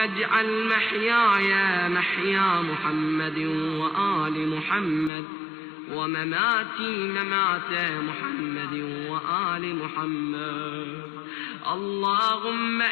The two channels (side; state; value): right; drops out; at 5.1 s